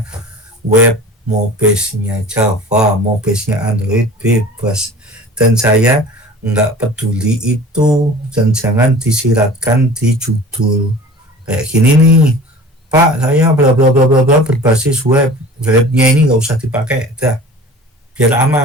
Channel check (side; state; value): both; normal; correlation 0.41